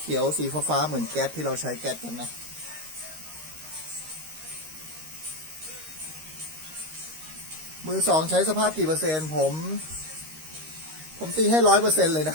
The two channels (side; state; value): left; late; 13 ms